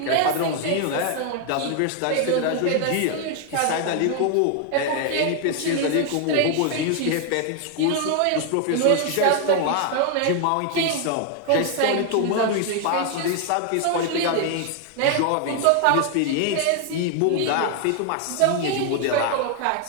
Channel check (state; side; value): different; both; correlation 0.00